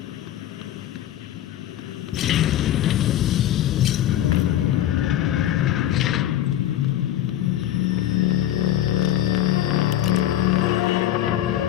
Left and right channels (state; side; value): quieter; right; 12.4 dB